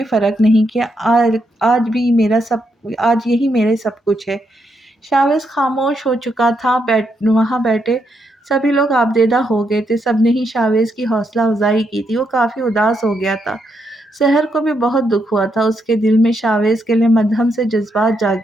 फ़र्क नहीं किया। आज यही मेरे सब कुछ है। शाहवेज़ खामोश हो चुका था। वहाँ बैठे सभी लोग आबदेदा हो गए थे। सबने ही शाहवेज़ की हौसला अफ़ज़ाई की थी। वो काफ़ी उदास हो गया था। सहर को भी बहुत दुःख हुआ था। उसके दिल में शाहवेज़ के लिए मद्धम से जज़्बात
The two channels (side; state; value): both; normal; correlation 0.79